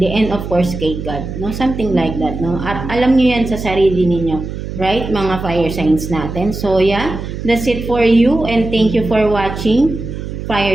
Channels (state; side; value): noise; right; hum, 7 dB below the sound